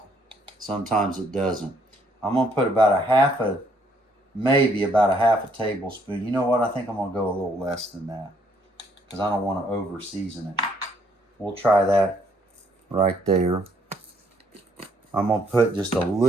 Sometimes it doesn't. I'm going to put maybe about a half a tablespoon. You know what? I think I'm going to go a little less than that because I don't want to over season it. We'll try that right there. I'm going to put just a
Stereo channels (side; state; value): both; normal; correlation 0.68